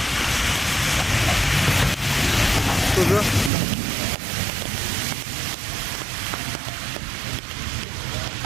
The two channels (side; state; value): left; drops out; at 3.5 s